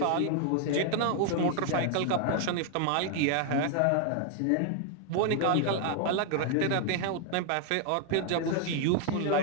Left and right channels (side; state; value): both; different; correlation 0.00